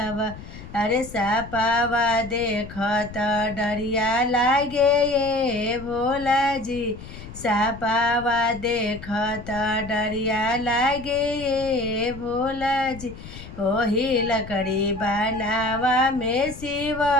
अरे सापावा देखत डरिया लागे ये भोला जी। सापावा देखत डरिया लागे ये भोला जी। ओही लकड़ी बनावा में शिव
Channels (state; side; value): noise; left; rumble, 14 dB below the sound